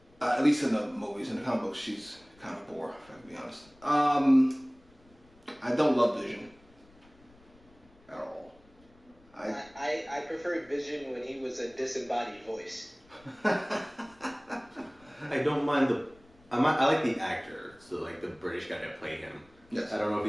At least in the movies. In the comic books, she's kind of boring, if I can be honest. I don't love Vision at all. I preferred Vision when he was a disembodied voice. I don't mind I like the actor, so like the British guy that played him. Yes. I don't know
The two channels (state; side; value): noise; left; rumble, 28 dB below the sound